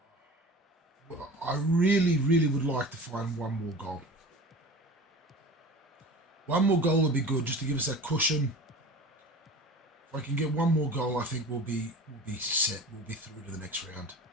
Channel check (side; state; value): both; normal; correlation 0.37